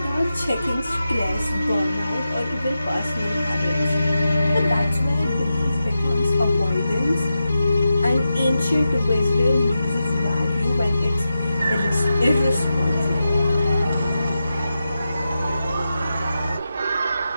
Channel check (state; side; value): inverted; both; correlation -0.90